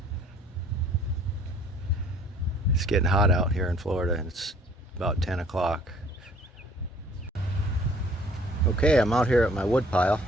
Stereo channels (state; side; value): normal; both; correlation 0.55